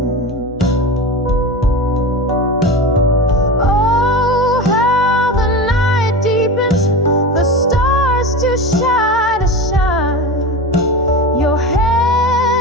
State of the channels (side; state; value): both; normal; correlation 0.26